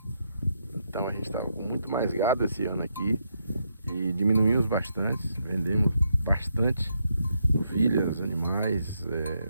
Então a gente estava com muito mais gado esse ano aqui e diminuímos bastante, vendemos bastante ovelhas, animais,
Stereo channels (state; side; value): inverted; both; correlation -0.79